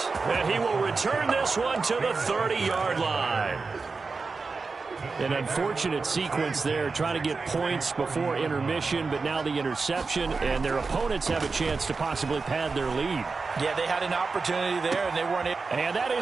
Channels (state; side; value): quieter; left; 4.3 dB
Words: And he will return this one to the 30-yard line. An unfortunate sequence there, trying to get points before intermission, but now the interception, and their opponents have a chance to possibly pad their lead. Yeah, they had an opportunity there, and they weren't able. And that